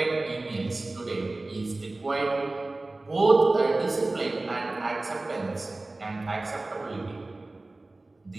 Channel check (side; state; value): left; quieter; 3.0 dB